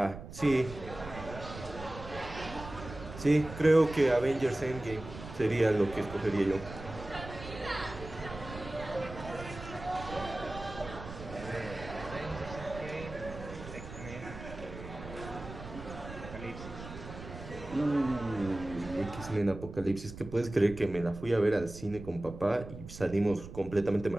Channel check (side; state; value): right; noise; rumble, 12 dB below the sound